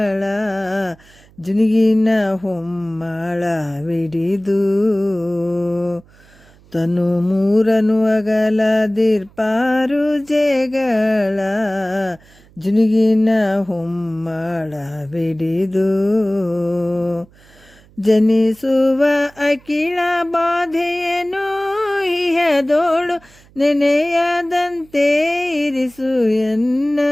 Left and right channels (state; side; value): noise; right; hum, 27 dB below the sound